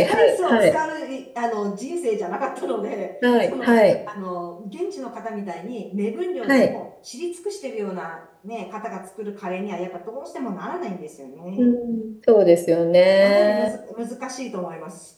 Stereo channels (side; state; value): both; identical; correlation 1.00